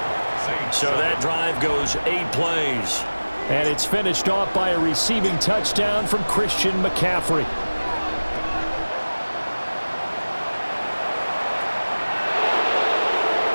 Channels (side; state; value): both; inverted; correlation -1.00